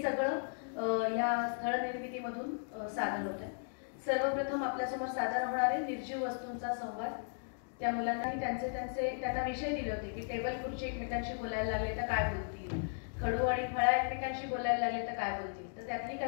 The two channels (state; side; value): silent; right; digital silence